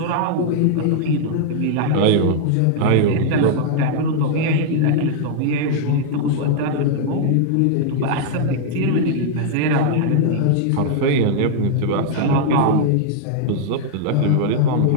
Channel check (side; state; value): both; different; correlation -0.01